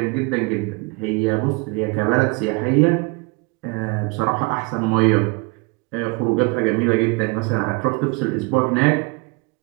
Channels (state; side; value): quieter; left; 28.9 dB